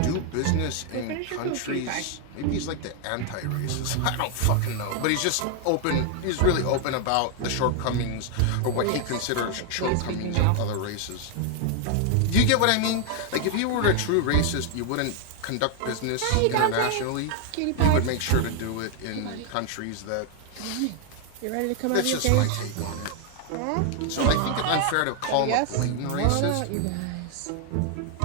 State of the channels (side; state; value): both; different; correlation 0.00